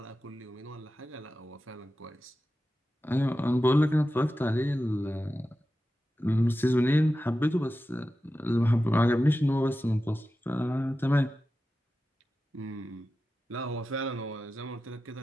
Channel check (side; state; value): both; normal; correlation 0.93